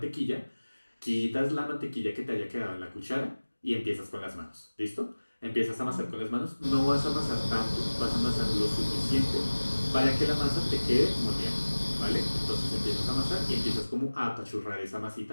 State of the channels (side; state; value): both; inverted; correlation -1.00